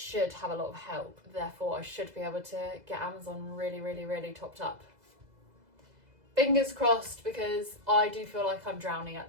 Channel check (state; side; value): late; left; 2.0 ms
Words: have a lot of help. Therefore, I should be able to get Amazon really, really, really topped up. Fingers crossed, because I do feel like I'm drowning at